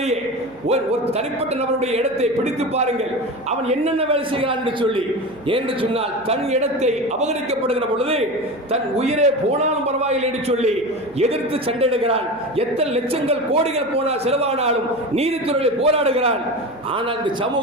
ஒரு தனிப்பட்ட நபருடைய இடத்தை பிடித்து பாருங்கள், அவன் என்னென்ன வேலை செய்கிறான் என்று சொல்லி. என்று சொன்னால் தன் இடத்தை அபகரிக்கப்படுகிற பொழுது தன் உயிரே போனாலும் பரவாயில்லை என்று சொல்லி எதிர்த்து சண்டையிடுகிறான். எத்தனை லட்சங்கள் கோடிகள் போனால் செலவானாலும் நீதித்துறையில் போராடுகிறான். ஆனால் இந்த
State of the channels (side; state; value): right; noise; hum, 26 dB below the sound